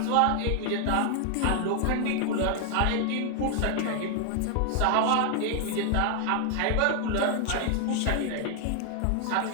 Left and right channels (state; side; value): different; both; correlation 0.00